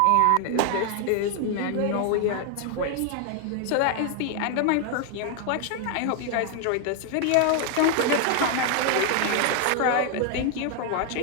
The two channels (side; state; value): both; different; correlation 0.00